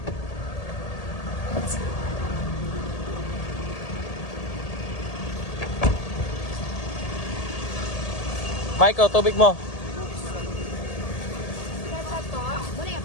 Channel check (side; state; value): right; late; 1.8 ms